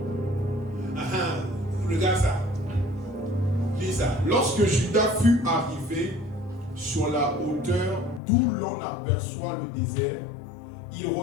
Regarde ça. Lis ça. Lorsque Judas fut arrivé sur la hauteur d'où l'on aperçoit le désert, ils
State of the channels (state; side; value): drops out; right; at 8.2 s